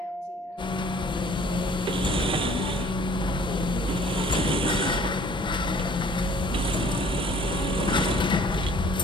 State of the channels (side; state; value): both; normal; correlation 0.54